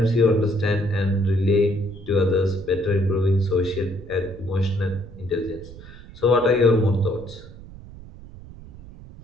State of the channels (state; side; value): noise; right; rumble, 17 dB below the sound